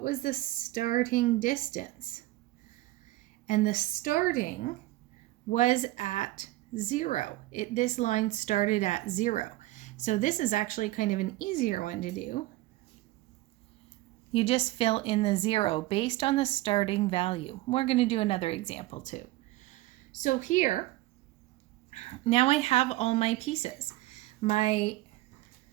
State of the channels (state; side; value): quieter; left; 18.0 dB